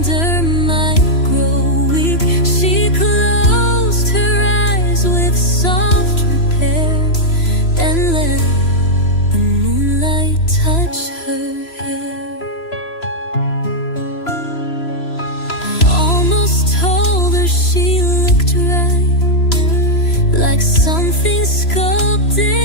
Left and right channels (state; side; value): late; right; 3.0 ms